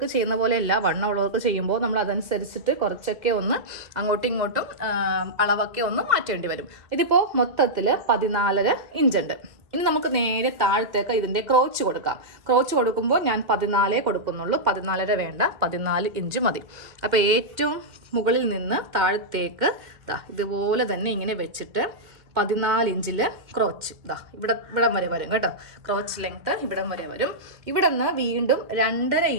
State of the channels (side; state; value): left; late; 2.1 ms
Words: ചെയ്യുന്ന പോലെയല്ല, വണ്ണമുള്ളവർക്ക് ചെയ്യുമ്പോൾ നമ്മൾ അതനുസരിച്ചിട്ട് കുറച്ചൊക്കെ ഒന്ന് അങ്ങോട്ടും ഇങ്ങോട്ടും അളവൊക്കെ ഒന്ന് മാറ്റേണ്ടി വരും. ഇതിപ്പോൾ മൊത്തത്തിൽ 14.5 ഇഞ്ചുണ്ട്. ഇനി നമുക്ക് നേരെ താഴത്തേക്ക് ഇതിൻ്റെ ക്രോച്ച് കൊടുക്കാം. ക്രോച്ച് കൊടുക്കുമ്പോൾ ഞാൻ 14 കൊടുക്കുന്നുള്ളൂ, 14.5 വേണ്ട, 14 ഇഞ്ച് മതി. അപ്പോൾ ഏറ്റവും മുകളിൽ നിന്ന് താഴത്തേക്ക് ഇതുപോലെ തന്നെ ഇങ്ങനെ വെച്ചിട്ട് 14 ഇഞ്ചിൽ ക്രോച്ച് ഇവിടം വരെ വരും കേട്ടോ. ക്രോച്ച് ലെങ്ത്ത് ഇവിടം വരെ വരും. ഇവിടെ നിന്ന് വീണ്ടും 2.5